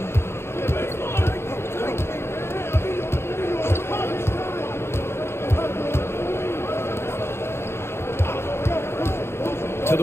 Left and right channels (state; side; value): late; right; 0.12 ms